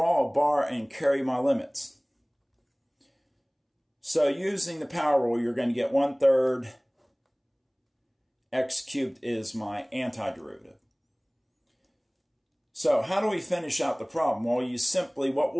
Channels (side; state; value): both; identical; correlation 1.00